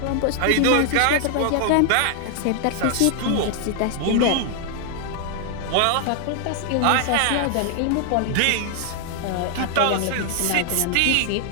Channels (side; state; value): both; different; correlation 0.00